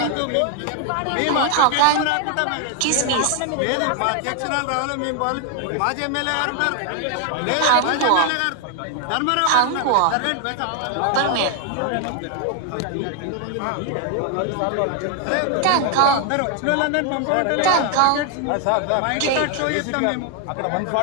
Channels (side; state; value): both; different; correlation 0.00